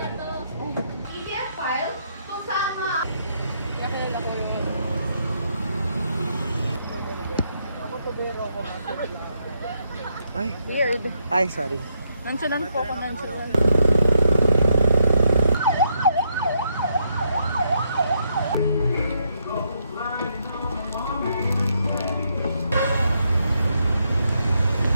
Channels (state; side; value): inverted; both; correlation -0.76